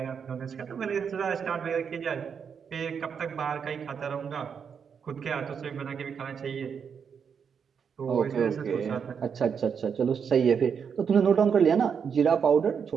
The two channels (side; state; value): left; quieter; 6.8 dB